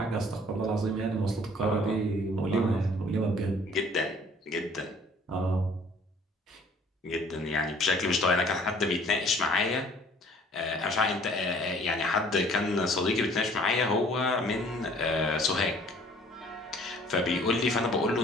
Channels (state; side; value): normal; both; correlation 0.54